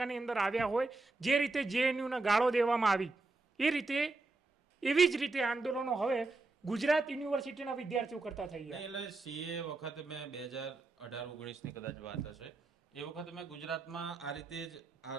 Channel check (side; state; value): left; quieter; 3.4 dB